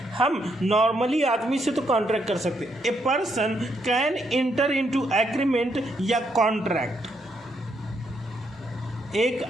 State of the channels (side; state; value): both; normal; correlation 0.76